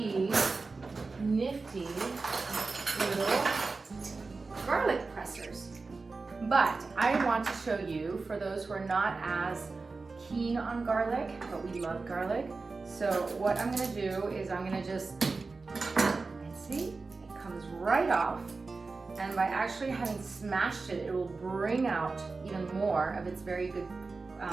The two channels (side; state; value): left; quieter; 4.0 dB